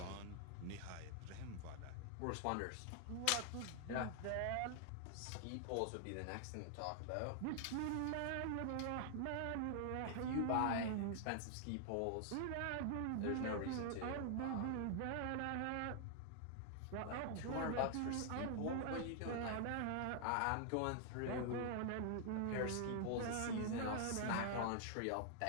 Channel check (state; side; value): different; both; correlation 0.00